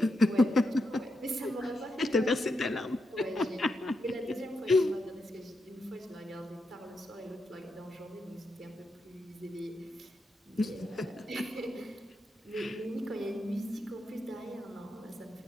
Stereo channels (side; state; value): both; normal; correlation 0.84